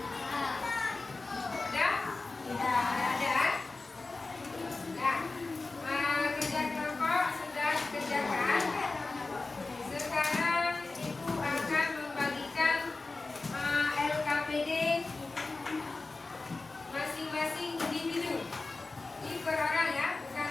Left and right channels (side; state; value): right; quieter; 3.5 dB